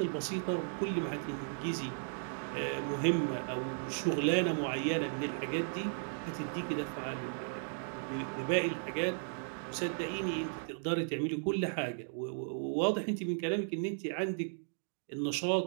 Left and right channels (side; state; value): left; silent; digital silence